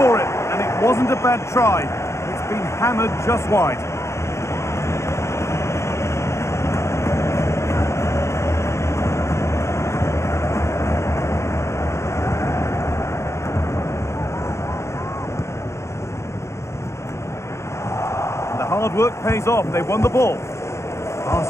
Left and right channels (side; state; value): right; late; 0.13 ms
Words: it, and it wasn't a bad try. It's been hammered just wide. Hard work pays off. They won the ball.